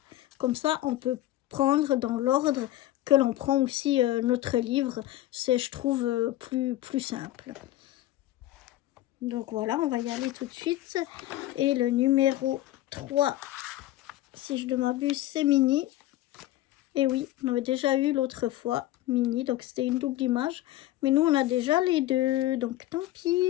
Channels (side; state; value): right; quieter; 15.0 dB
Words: Comme ça, on peut prendre dans l'ordre que l'on prend aussi notre livre. C'est, je trouve, plus simple. Donc voilà, on va y aller tout de suite. Et le numéro 3, si je ne m'abuse, c'est Mini. Et oui, on avait déjà eu l'autre fois Mini, donc c'était une double image. Mais nous, on a déjà les deux, donc tant